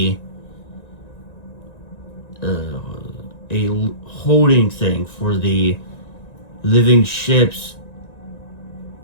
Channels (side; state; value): right; late; 1.9 ms